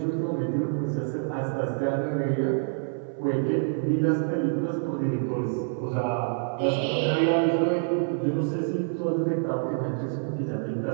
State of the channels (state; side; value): silent; left; 60 dB below the other